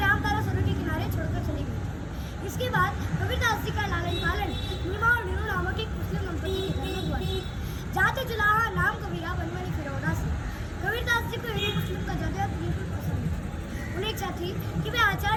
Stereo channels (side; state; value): both; identical; correlation 1.00